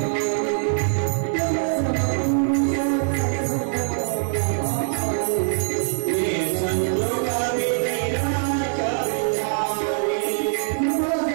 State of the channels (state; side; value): silent; left; 63 dB below the other